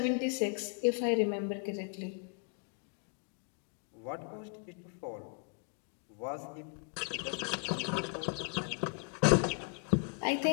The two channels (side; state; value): right; quieter; 38.2 dB